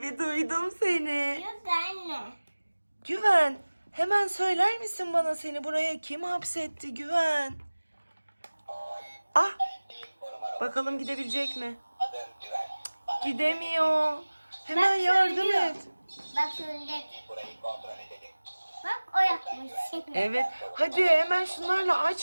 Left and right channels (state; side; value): inverted; both; correlation -1.00